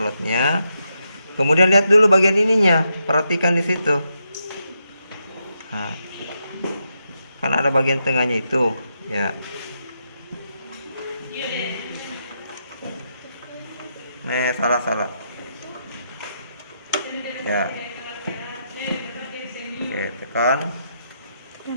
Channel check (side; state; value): both; inverted; correlation -0.82